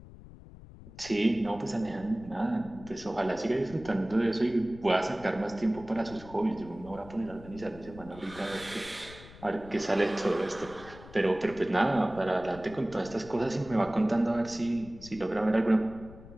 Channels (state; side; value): noise; left; rumble, 18 dB below the sound